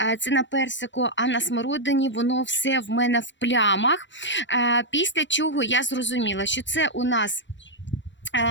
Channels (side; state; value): right; late; 0.53 ms